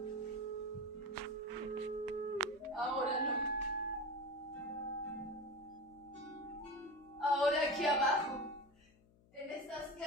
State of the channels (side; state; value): left; noise; hum, 28 dB below the sound